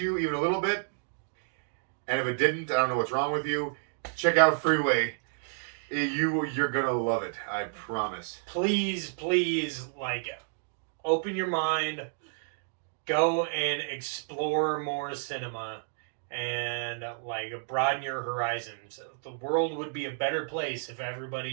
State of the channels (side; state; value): left; silent; digital silence